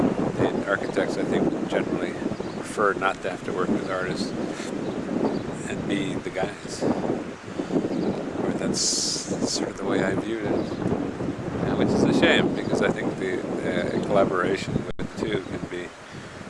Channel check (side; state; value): both; identical; correlation 1.00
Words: And architects, I think, generally prefer not to have to work with artists and be the guys. Or that's sort of the way I viewed it, which is a shame, because I think the collaboration with the two can be